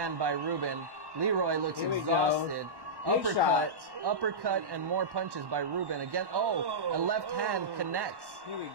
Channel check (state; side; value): late; left; 1.1 ms